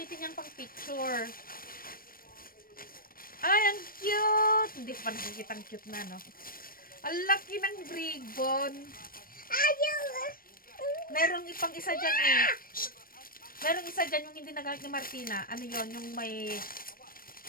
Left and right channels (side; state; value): right; late; 0.42 ms